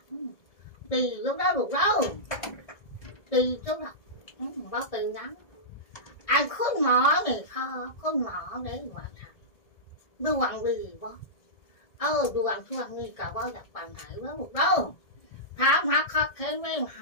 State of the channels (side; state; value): right; late; 1.7 ms